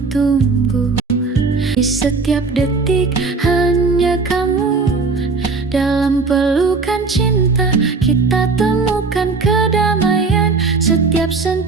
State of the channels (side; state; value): left; quieter; 4.3 dB